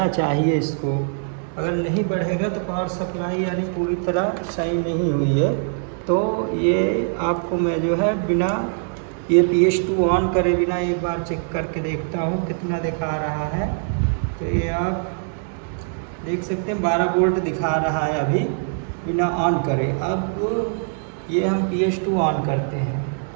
चाहिए इसको। अगर नहीं बढ़ेगा तो पावर सप्लाई यानी पूरी तरह सही नहीं हुई है। तो ये आपको मैं जो है बिना ये PS2 ऑन करे बिना एक बार चेक करके देखता हूँ कितना दिखा रहा है। तो ये आप देख सकते हैं 12 वोल्ट दिखा रहा है अभी बिना ऑन करे। अब ये हम PS2 ऑन करते हैं,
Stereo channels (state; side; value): silent; left; 62 dB below the other